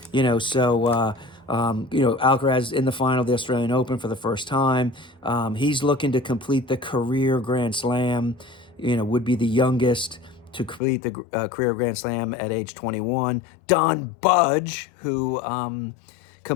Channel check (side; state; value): right; drops out; at 10.8 s